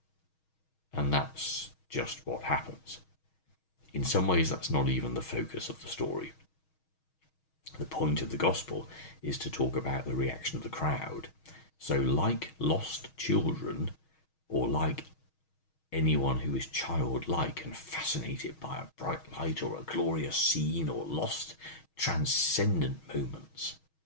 And that's just what happens. In some ways, that's not even the focus of the story. The point of the gospel is to talk about the reaction of the crowd. So like lost children, or like anyone who is childlike and fascinated by a bright light or a glorious scene or lost transcendent moments,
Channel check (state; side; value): late; right; 6.3 ms